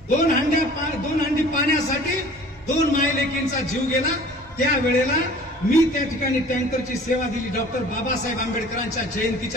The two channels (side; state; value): both; normal; correlation 0.47